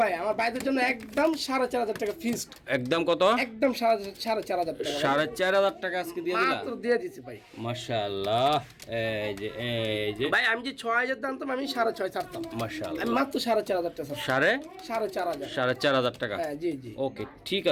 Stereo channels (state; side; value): identical; both; correlation 1.00